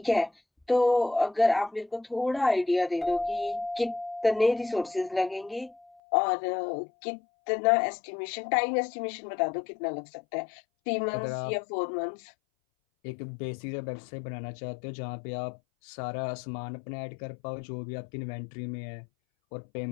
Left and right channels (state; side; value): drops out; right; at 6.0 s